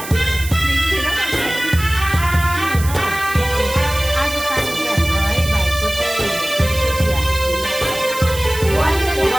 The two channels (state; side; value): noise; right; hiss, 11 dB below the sound